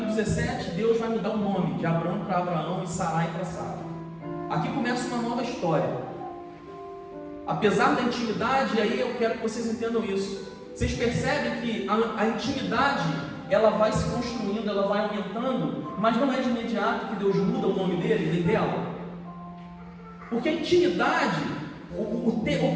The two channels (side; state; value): both; identical; correlation 1.00